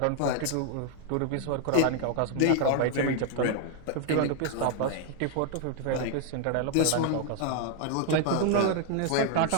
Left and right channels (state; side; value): different; both; correlation 0.00